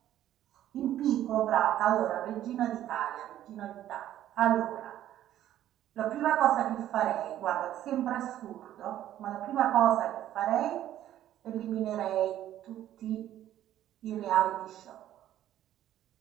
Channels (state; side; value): quieter; left; 12.3 dB